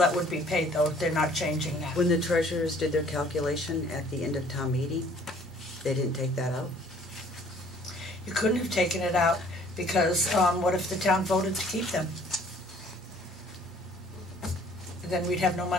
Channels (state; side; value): normal; both; correlation 0.57